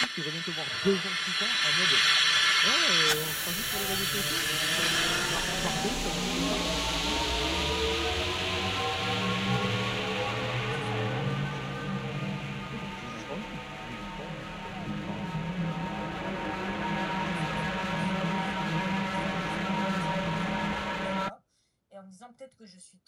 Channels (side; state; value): both; identical; correlation 1.00